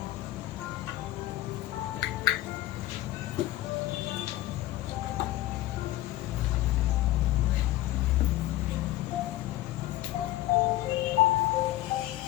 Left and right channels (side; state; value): right; quieter; 15.7 dB